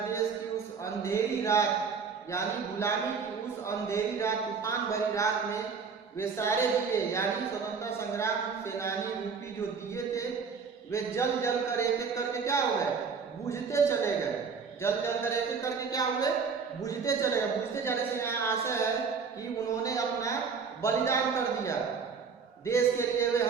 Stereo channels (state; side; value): quieter; left; 5.6 dB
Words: देश की उस अंधेरी रात, यानी गुलामी की उस अंधेरी रात, तूफान भरी रात में वे सारे दिए, यानी स्वतंत्रता संग्राम सेनानी रूपी जो दिए थे, वे जल जल कर एक एक करके क्या हो गए, बुझते चले गए। जल जल कर एक एक करके क्या हुए, बुझते चले गए। बुझते जाने से यहाँ आशा है कि उन्होंने अपना बलिदान कर दिया देश के लिए। वे